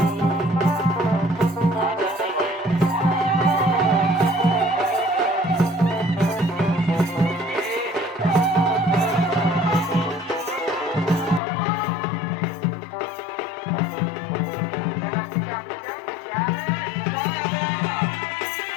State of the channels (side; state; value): right; drops out; at 11.4 s